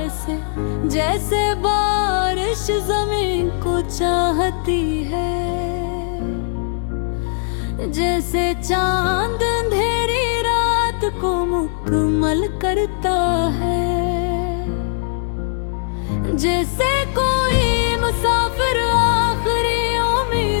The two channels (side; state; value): right; silent; 66 dB below the other